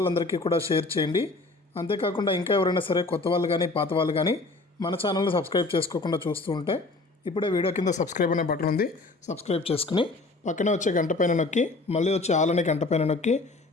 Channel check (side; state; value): right; quieter; 3.4 dB